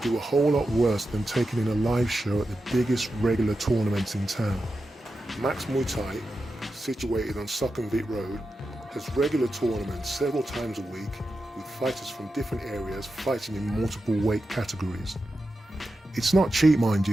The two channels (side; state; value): both; normal; correlation 0.90